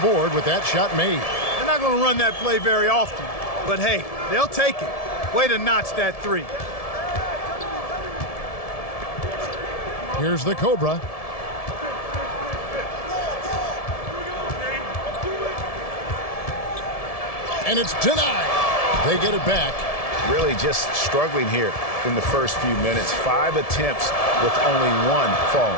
with that shot made. They're not going to run that play very often. But hey, they'll take it. Way to notch that 3. Here's the Cobra. And it's denied. They get it back. Really just struggling here in the first few minutes. 5 attempts with only 1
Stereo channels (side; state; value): right; late; 1.7 ms